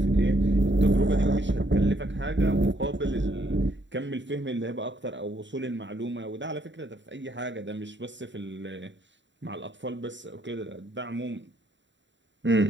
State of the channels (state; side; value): late; left; 0.53 ms